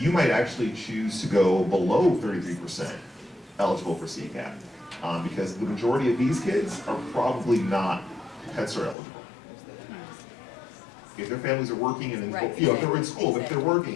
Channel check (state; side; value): drops out; right; at 9.0 s